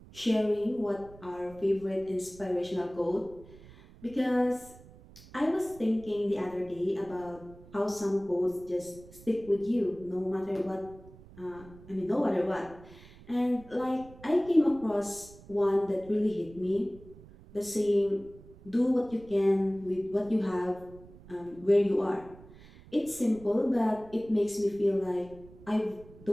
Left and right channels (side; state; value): right; noise; rumble, 20 dB below the sound